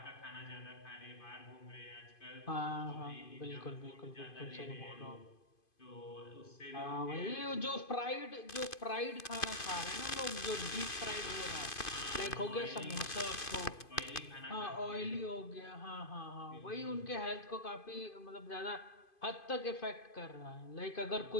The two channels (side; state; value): right; late; 2.5 ms